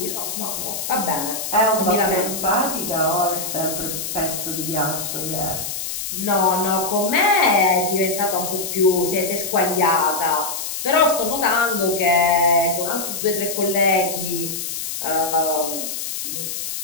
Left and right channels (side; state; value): left; noise; hiss, 5 dB below the sound